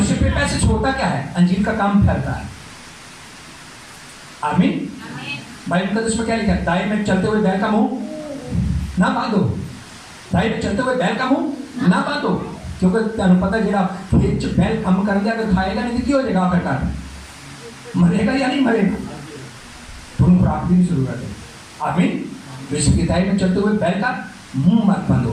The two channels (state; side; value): identical; both; correlation 1.00